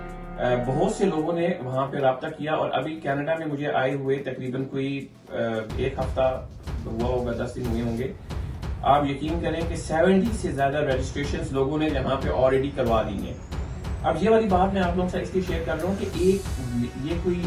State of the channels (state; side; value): identical; both; correlation 1.00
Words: بہت سے لوگوں نے وہاں پہ رابطہ کیا اور ابھی کینیڈا میں مجھے آئے ہوئے تقریباً کوئی 1 ہفتہ ہوا ہوگا، 10 دن ہوئے ہوں گے. آپ یقین کریں کہ 70 سے زیادہ رجسٹریشنز لوگوں نے یہاں پہ آلریڈی کروا لی ہیں. اب یہ والی بات میں آپ لوگوں سے اس لیے شیئر کر رہا ہوں کہ یہ کوئی